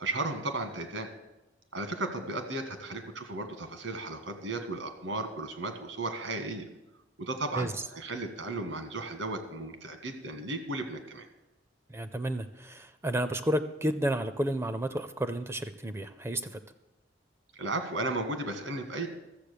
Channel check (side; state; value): both; normal; correlation 0.41